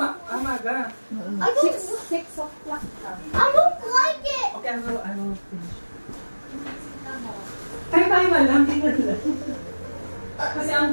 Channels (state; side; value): inverted; both; correlation -1.00